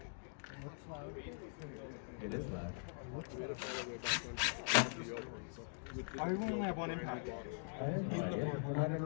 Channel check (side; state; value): right; silent; digital silence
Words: It is loud. I only have one impact. I have no idea. We're not in a